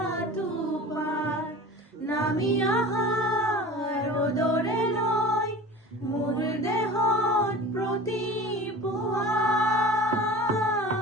টোপাল, নামি অহা ৰ'দৰে লৈ মোৰ দেহত প্ৰতিপুৱা।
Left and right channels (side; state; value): both; normal; correlation 0.37